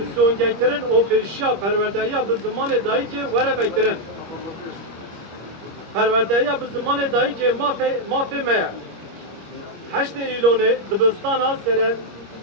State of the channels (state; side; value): late; left; 25 ms